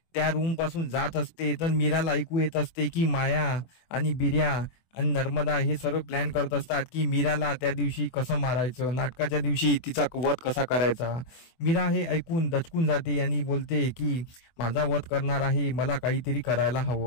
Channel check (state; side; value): late; right; 24 ms